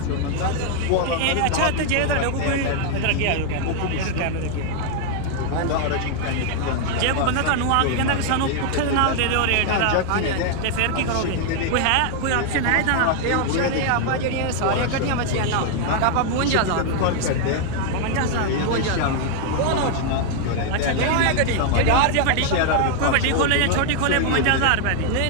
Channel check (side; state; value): both; different; correlation 0.00